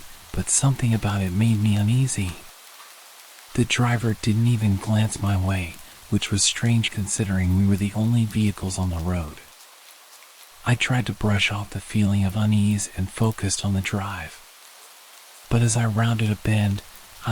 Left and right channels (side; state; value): both; identical; correlation 1.00